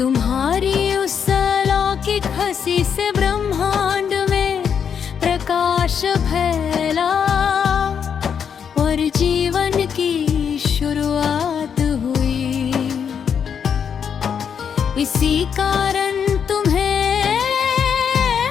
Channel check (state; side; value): quieter; right; 7.4 dB